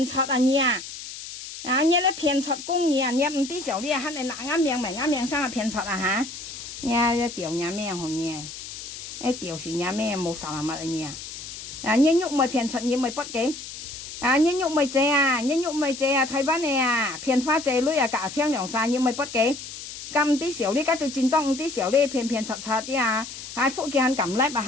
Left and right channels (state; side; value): noise; left; hiss, 11 dB below the sound